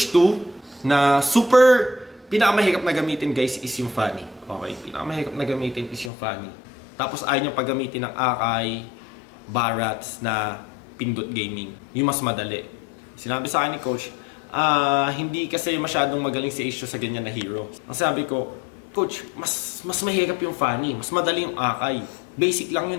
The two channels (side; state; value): right; drops out; at 6.1 s